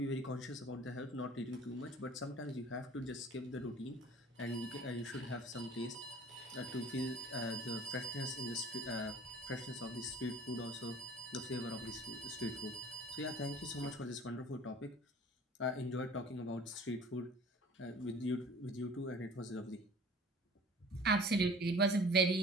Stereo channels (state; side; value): normal; both; correlation 0.46